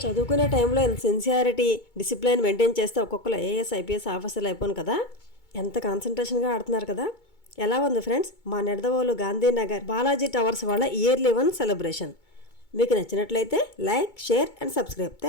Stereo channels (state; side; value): late; right; 2.2 ms